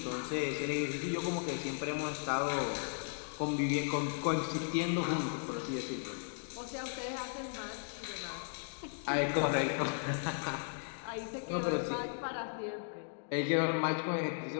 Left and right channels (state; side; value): silent; right; digital silence